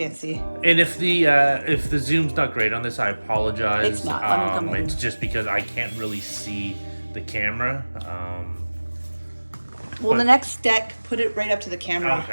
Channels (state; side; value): inverted; both; correlation -1.00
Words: And if the zoom's not great on this, I apologize. It's not. Let me come in. It's just because I can't really see the camera. Well, the next deck, put it right up to the camera.